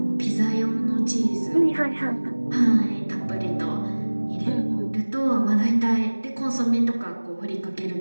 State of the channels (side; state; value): both; inverted; correlation -1.00